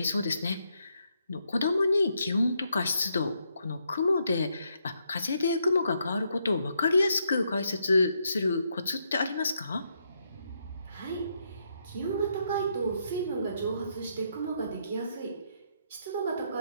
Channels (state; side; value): inverted; both; correlation -0.77